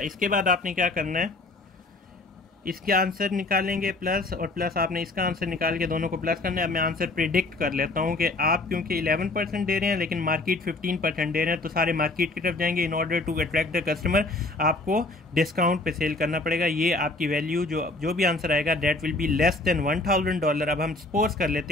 इसके बाद आपने क्या करना है, इसके आंसर निकालेंगे प्लस और प्लस आपने इसका आंसर निकाल के दोनों को प्लस करना है। अब मैं आंसर प्रिडिक्ट कर लेता हूँ कि आप क्योंकि 11% दे रहे हैं लेकिन मार्केट 15% दे रहे हैं, तो सारे मार्केट की तरफ जाएंगे। In order to attract the customer आपको डिस्काउंट पे सेल करना पड़ेगा। ये आपकी वैल्यू जो भी आंसर आएगा that will be less than $1000। अब हम सपोज कर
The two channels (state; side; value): quieter; right; 3.0 dB